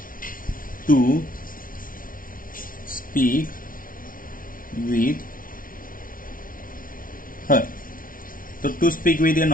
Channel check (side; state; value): right; late; 0.40 ms